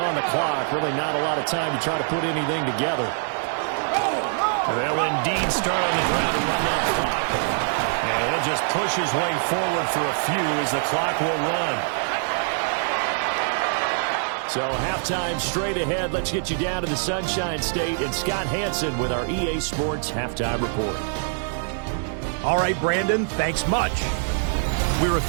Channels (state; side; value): silent; left; digital silence